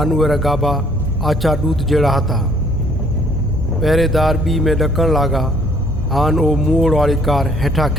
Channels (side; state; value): both; normal; correlation 0.61